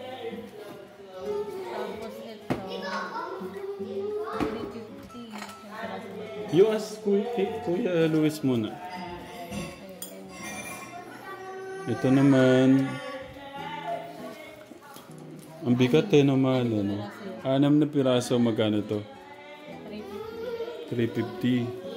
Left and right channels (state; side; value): identical; both; correlation 1.00